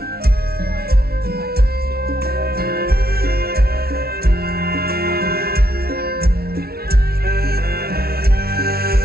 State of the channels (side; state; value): left; late; 0.45 ms